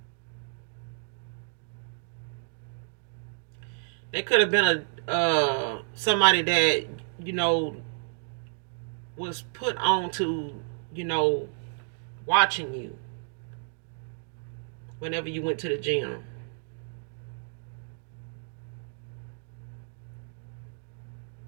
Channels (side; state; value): left; silent; digital silence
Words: they could have been a somebody that, you know, was put on to, you know, watching you whenever you went to the gym.